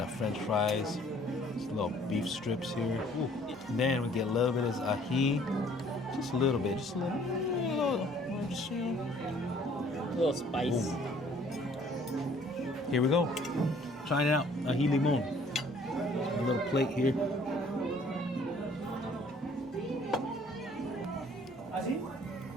French fries, just little beef strips here. Ooh. Then we get a little bit of ají, just a little bit, just a little, just, you know. A little spice. Boom. Here we go. Trying it out. Ají limon. A little plate here.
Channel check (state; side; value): normal; both; correlation 0.57